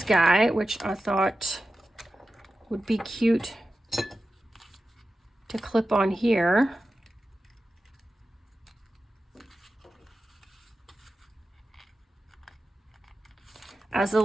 guy, which I thought would be cute to clip on here. As a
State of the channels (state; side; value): normal; both; correlation 0.93